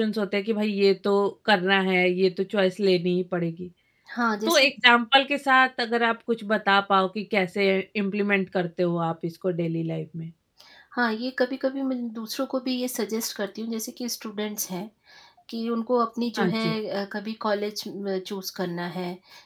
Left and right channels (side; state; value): both; identical; correlation 1.00